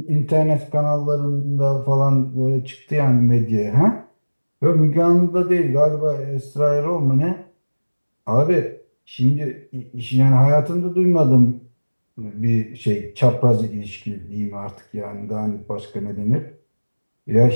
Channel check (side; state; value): both; inverted; correlation -1.00